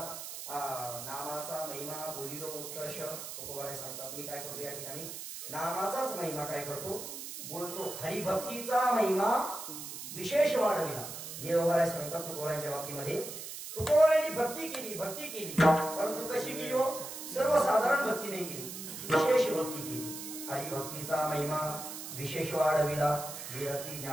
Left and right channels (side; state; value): right; noise; hiss, 9 dB below the sound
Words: नामाचा महिमा बोलिलो उत्कर्ष. तुकोबाराय सांगतात मी काय करतो या ठिकाणी? नामाचाच महिमा काय करतो? बोलतो. हरिभक्तीचा महिमा विशेष वाढविला. देवबाराय सांगतात तुकोबारायच्या बाबतीमध्ये तुकोबारायांनी भक्ती केली परंतु कशी केली हो? सर्वसाधारण भक्ती नाही केली, विशेष भक्ती केली. हरिभक्तीचा महिमा विशेष वाढविला. विरती